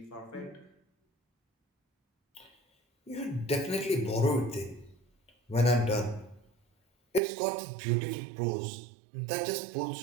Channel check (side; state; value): left; drops out; at 7.2 s